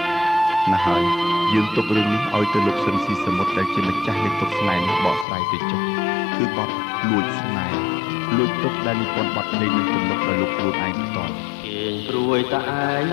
ណាស់ហើយយើងទុករឿងនេះឲ្យទៅលោកស៊ិនស៊ីសមុទ្រដែលជាម្ចាស់នៃទុកស្នេហ៍នេះបកស្រាយទៅចុះគឺបទលួចស្នេហ៍លួចទុកដែលនិពន្ធបទភ្លេងនឹងទំនុកដោយលោកខ្លួនឯងផ្ទាល់គេព្រួយតែឯង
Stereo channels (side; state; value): right; drops out; at 5.2 s